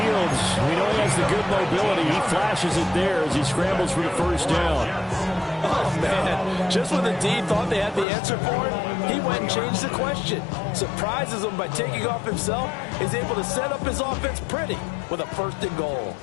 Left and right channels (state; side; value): drops out; right; at 8.1 s